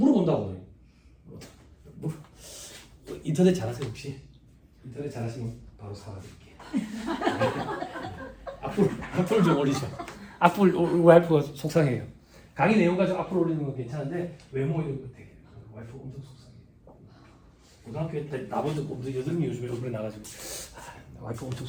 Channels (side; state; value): both; identical; correlation 1.00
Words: 인터넷 잘하세요 혹시? 인터넷 잘하시면 바로 사과드릴게요. 악플 좀 올리죠. 악플 와이프가 속상해요. 강의 내용 가지고 악플 올리는 건 괜찮은데 외모 이런 거 되게 와이프가 엄청 속상해요. 고등학교 때 나본 적 없는데 여드름이 요즘에 얼굴에 나가지고 와이프가 엄청